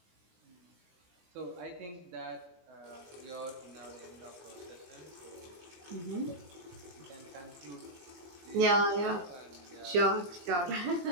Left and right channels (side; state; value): left; late; 22 ms